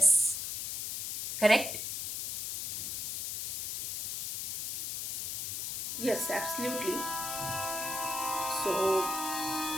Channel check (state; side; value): noise; left; hiss, 3 dB below the sound